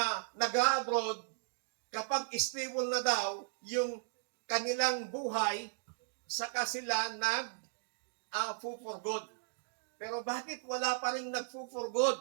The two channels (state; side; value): silent; left; digital silence